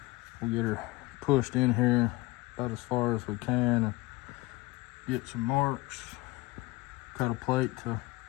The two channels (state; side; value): quieter; right; 21.0 dB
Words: We'll get her pushed in here about as far as we can and get some marks. Cut a plate to